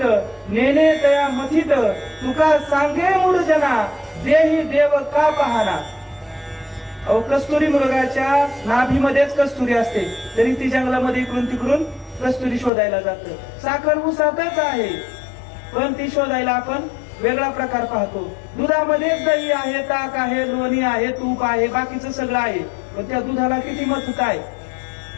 नेने तया मथित, तुका सांगे मूळ जना देही देव का पाहना. अहो कस्तुरी मृगाच्या नाभीमध्येच कस्तुरी असते, तरी ती जंगलामध्ये इकडून तिकडून कस्तुरी शोधायला जातं. साखर ऊसातच आहे, पण ती शोधायला आपण वेगळा प्रकार पाहतो. दुधामध्येच दही आहे, ताक आहे, लोणी आहे, तूप आहे, बाकीचं सगळं आहे, पण त्या दुधाला किती मथुत आहे,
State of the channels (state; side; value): drops out; right; at 12.7 s